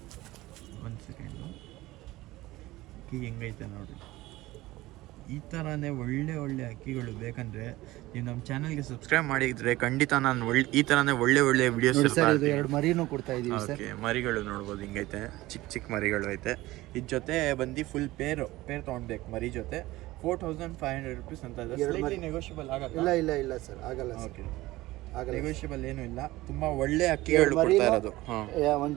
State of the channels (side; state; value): left; quieter; 18.2 dB